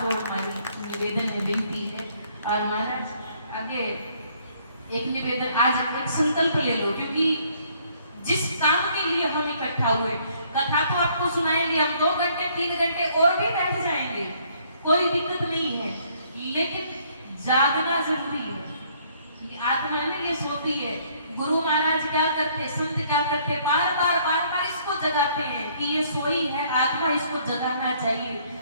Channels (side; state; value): both; inverted; correlation -0.64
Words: जोड़ हमारी निवेदन है, विनती है। और महाराज आगे एक निवेदन, आज एक संकल्प ले लो, क्योंकि जिस काम के लिए हम इकट्ठा हुए, कथा तो आपको सुनाएंगे हम 2 घंटे 3 घंटे और भी बैठ जाएंगे, कोई दिक्कत नहीं है, लेकिन जागना जरूरी है। आत्मा है ना, ये सोती है। गुरु महाराज क्या करते, संत क्या करते, बार बार इसको जगाते हैं कि ये सोई है आत्मा, इसको जगाना चाहिए।